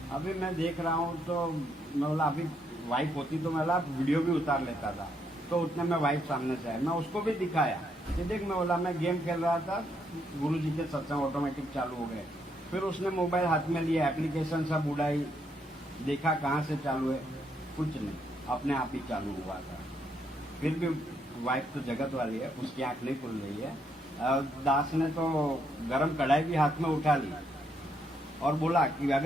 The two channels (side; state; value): both; normal; correlation 0.75